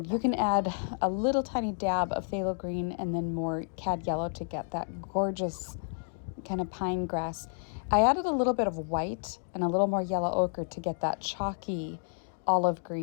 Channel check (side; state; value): right; silent; 57 dB below the other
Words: you can add a little tiny dab of phthalo green and then more cad yellow to get that gorgeous kind of pine grass. I added a little bit of white and a little more yellow ochre to get that chalky olive